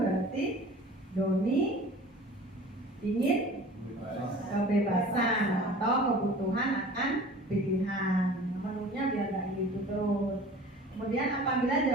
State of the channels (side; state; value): both; normal; correlation 0.43